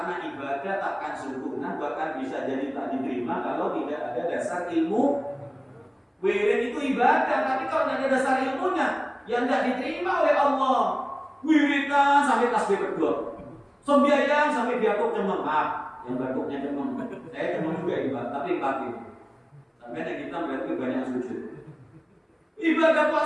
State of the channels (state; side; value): identical; both; correlation 1.00